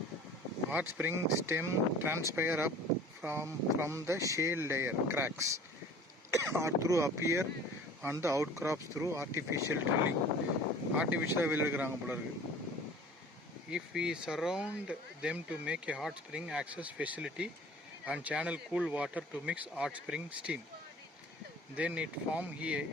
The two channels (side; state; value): both; normal; correlation 0.45